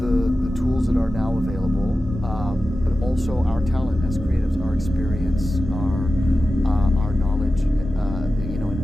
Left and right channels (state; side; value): normal; both; correlation 0.94